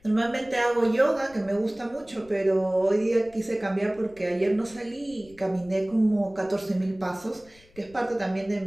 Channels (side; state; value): left; noise; rumble, 27 dB below the sound